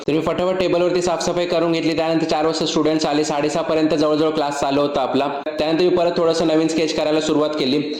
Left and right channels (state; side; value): identical; both; correlation 1.00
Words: तर मी फटाफट टेबलवरती साफसफाई करून घेतली. त्यानंतर 4 वाजता स्टुडंट्स आले. 6:30 पर्यंत जवळजवळ क्लास चालू होता आपला. त्यानंतर मी परत थोडंसं नवीन स्केच करायला सुरुवात केली.